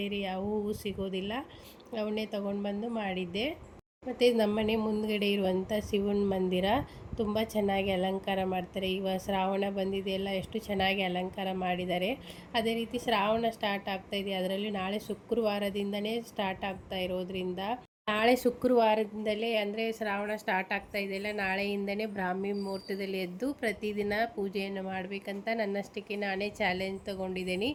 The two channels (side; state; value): both; identical; correlation 1.00